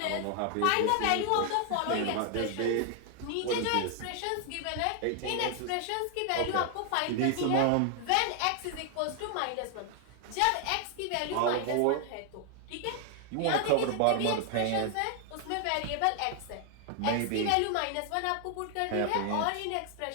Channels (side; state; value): both; different; correlation 0.00